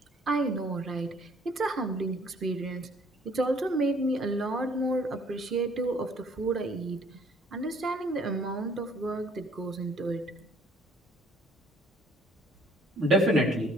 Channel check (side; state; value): both; normal; correlation 0.59